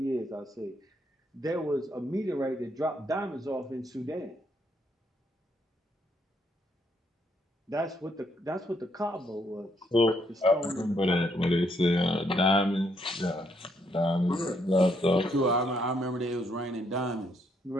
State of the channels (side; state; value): both; normal; correlation 0.73